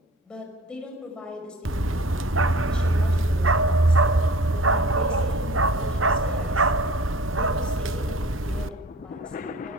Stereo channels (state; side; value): normal; both; correlation 0.44